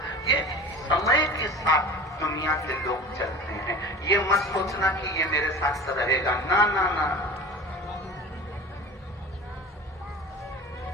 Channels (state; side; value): normal; both; correlation 0.36